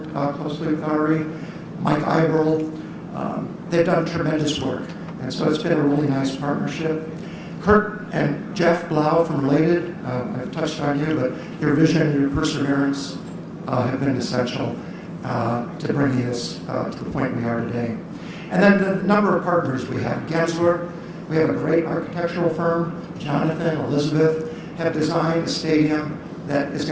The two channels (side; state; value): both; identical; correlation 1.00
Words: closely with Ari. Mike Iberl. They've done tremendous work. And so it's been a really nice partnership. Kurt and Jeff Blau from Related, I've touched on you, but your vision and your perseverance have been essential to bringing us to the point we are today. And then the number of partners we have. Gensler, we have a great architectural firm. Jonathan, Elizabeth have designed a stadium that is